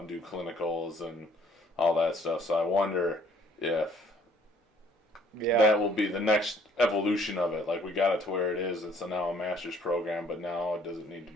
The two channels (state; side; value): normal; both; correlation 0.60